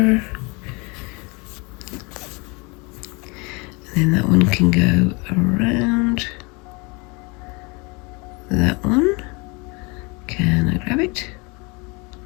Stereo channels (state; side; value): quieter; right; 29.0 dB